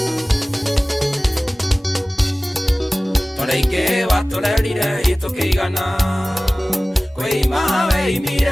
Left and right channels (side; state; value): both; normal; correlation 0.98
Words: toreike waturerire itukigana kwima